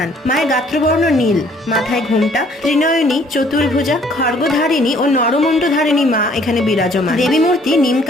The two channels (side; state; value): both; normal; correlation 0.60